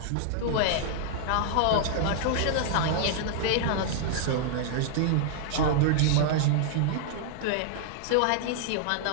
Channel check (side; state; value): both; different; correlation -0.01